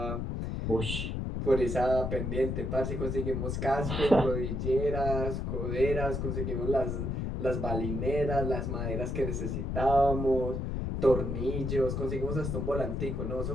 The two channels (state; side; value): noise; left; rumble, 2 dB below the sound